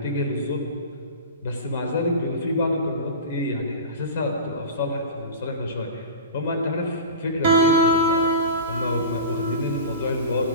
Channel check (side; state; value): both; inverted; correlation -0.31